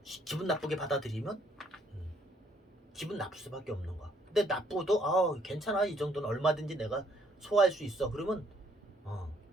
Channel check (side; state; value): both; normal; correlation 0.67